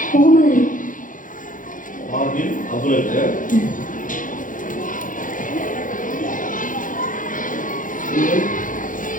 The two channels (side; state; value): right; late; 0.38 ms